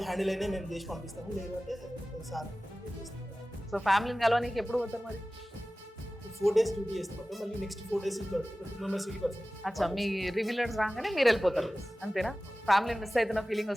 హ్యాండిల్ అయినా మేము చేసి పంపిస్తాము, లేదంటే సార్. సో ఫ్యామిలీని కలవడానికి ఎప్పుడు పోతారు మరి? 4 days డ్యూటీ చేస్తాం, మళ్ళీ నెక్స్ట్ 4 days 2 members వెళ్ళిపోతాం. అచ్చా, మీ రివ్యూలర్స్ రాగానే మీరు వెళ్ళిపోతారు అంతేనా? ఫ్యామిలీని మిస్ అవుతున్న ఫీలింగ్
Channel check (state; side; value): normal; both; correlation 0.97